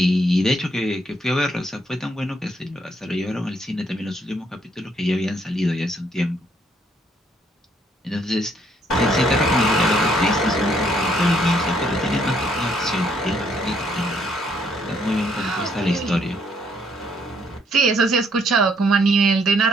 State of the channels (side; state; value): both; normal; correlation 0.69